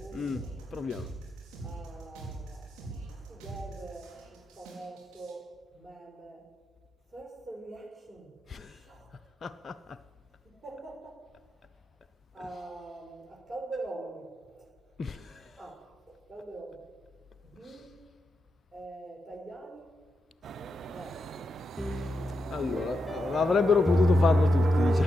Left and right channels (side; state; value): both; normal; correlation 0.86